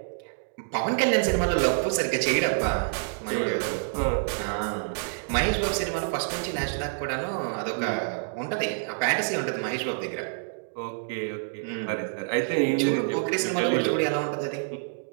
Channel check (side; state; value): left; silent; digital silence